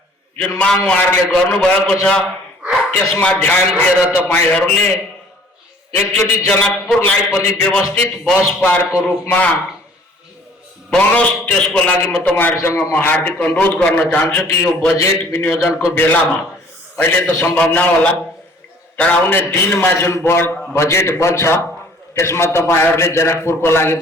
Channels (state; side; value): normal; both; correlation 0.54